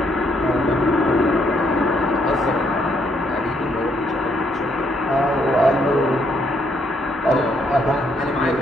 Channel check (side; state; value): both; normal; correlation 0.72